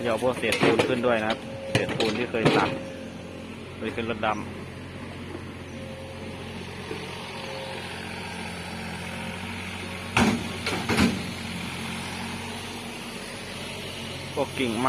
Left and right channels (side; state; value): both; identical; correlation 1.00